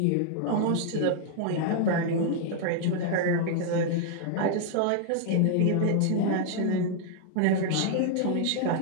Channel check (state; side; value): different; both; correlation 0.00